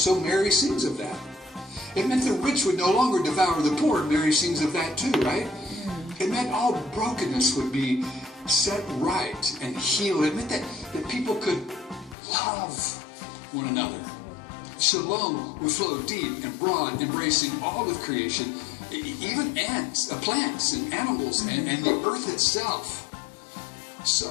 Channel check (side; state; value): right; drops out; at 12.2 s